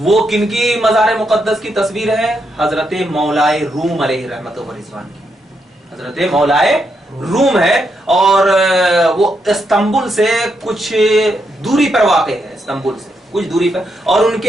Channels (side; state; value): both; normal; correlation 0.80